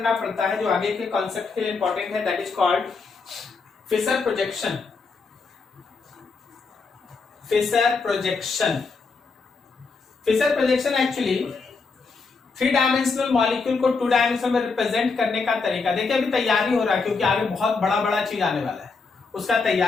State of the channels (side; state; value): right; quieter; 4.5 dB